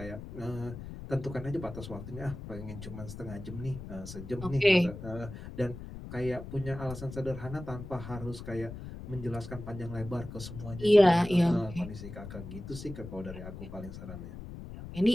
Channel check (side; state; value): left; noise; rumble, 11 dB below the sound